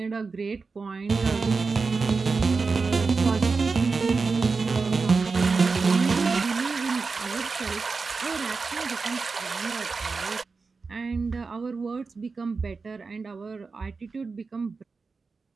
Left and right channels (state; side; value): quieter; left; 4.5 dB